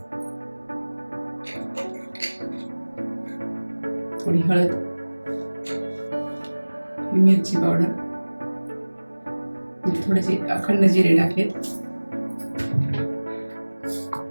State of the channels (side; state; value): both; inverted; correlation -1.00